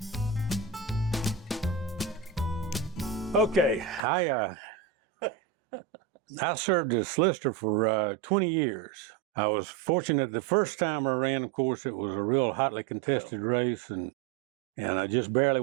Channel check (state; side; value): drops out; left; at 4.0 s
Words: Okay, I served as solicitor for 20 years. I was fortunate the first time I ran, of course, it was a real hotly contested race, and I just barely